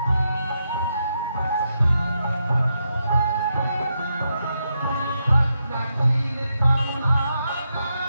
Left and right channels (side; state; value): both; inverted; correlation -0.83